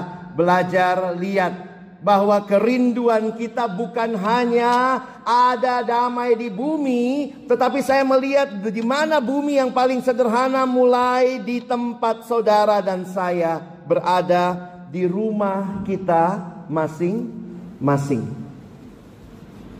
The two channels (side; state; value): both; identical; correlation 1.00